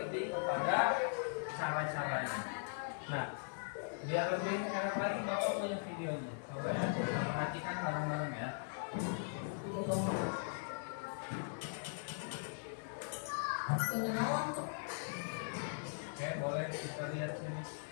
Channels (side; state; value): right; silent; digital silence